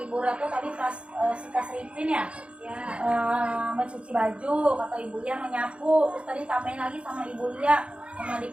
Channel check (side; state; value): left; late; 0.059 ms